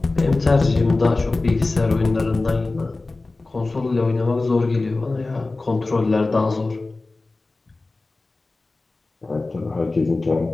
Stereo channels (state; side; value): quieter; right; 3.3 dB